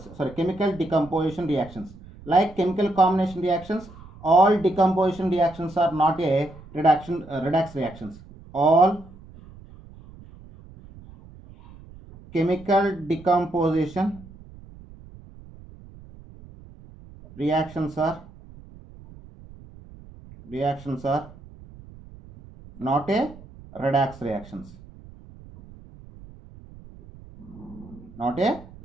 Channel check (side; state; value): right; noise; rumble, 20 dB below the sound